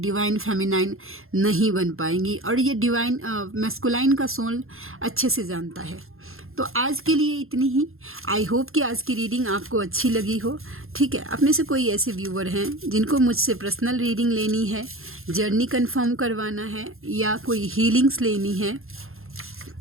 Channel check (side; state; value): left; late; 0.61 ms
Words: फेमिनाइन नहीं बन पाएंगी। और ये डिवाइन मैस्कुलाइन का सोल अच्छे से जानता है। तो आज के लिए इतनी ही। आई होप कि आज की रीडिंग आपको अच्छी लगी हो, ठीक है। आप में से कोई ऐसे व्यूअर हैं जिनको मुझसे पर्सनल रीडिंग लेनी है, जर्नी कंफर्म करवाना है या कोई हीलिंग्स लेनी है,